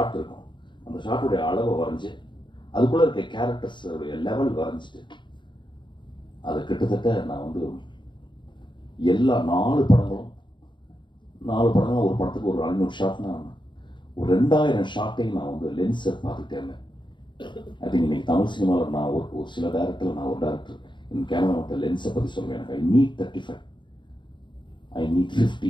இருக்கும், அந்த ஷார்ட்டுடைய அளவை வரைஞ்சி அதுக்குள்ளே இருக்க கேரக்டர்ஸுடைய லெவல் வரைஞ்சிட்டு அதை கிட்டத்தட்ட நான் வந்து எல்லா 4 படங்களும் ஒரு படத்துக்கு ஒரு 500 ஷார்ட்னா ஒரு 2000 ஷார்ட்டையும் நான் வந்து லென்ஸை பார்த்துட்டே இருந்தேன். ஐ திங்க் இன்னைக்கு தமிழ் சினிமாவில் நான் ஒரு சில டேரக்டர், நான் ஒரு டேரக்டர் என் கேமரா மட்டும் லென்ஸை பற்றி சொல்லுவேன். எனக்கு I need 35, I need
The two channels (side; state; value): right; late; 0.23 ms